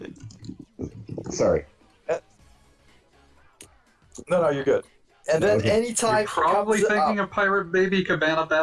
Sorry. No, you're good. And then Okay. anytime You're probably it comes thinking up, of Pirate Baby Cabana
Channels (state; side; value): identical; both; correlation 1.00